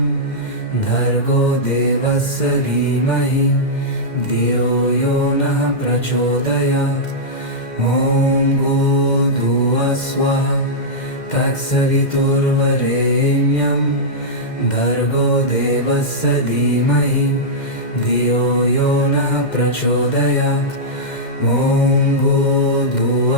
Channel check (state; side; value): late; right; 2.1 ms